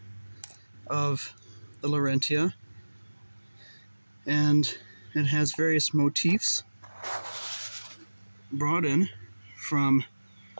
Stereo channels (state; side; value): inverted; both; correlation -1.00